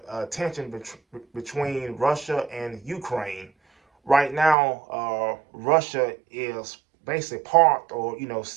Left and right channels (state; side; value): drops out; left; at 4.5 s